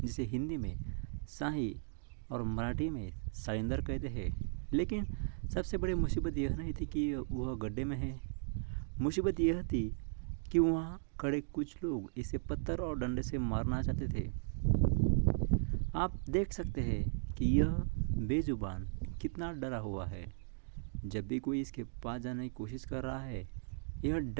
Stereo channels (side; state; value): left; silent; digital silence